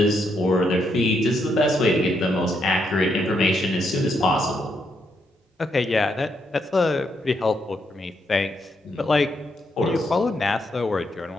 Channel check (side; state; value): both; normal; correlation 0.78